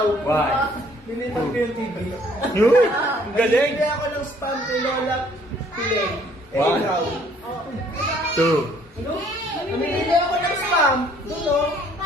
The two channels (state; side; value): normal; both; correlation 0.61